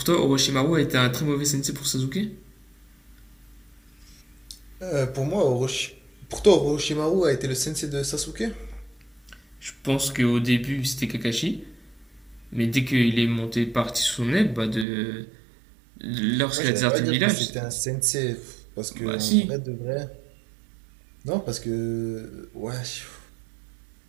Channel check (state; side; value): drops out; left; at 14.9 s